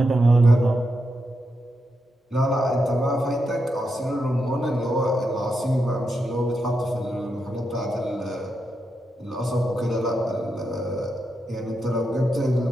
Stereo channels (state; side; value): normal; both; correlation 0.85